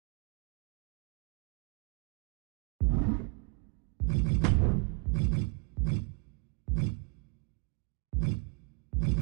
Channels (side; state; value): left; quieter; 35.0 dB